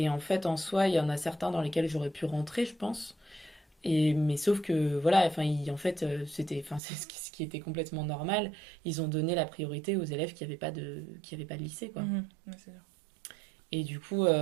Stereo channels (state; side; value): drops out; left; at 6.8 s